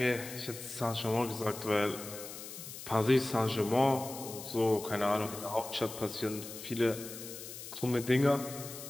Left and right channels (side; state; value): left; noise; hiss, 11 dB below the sound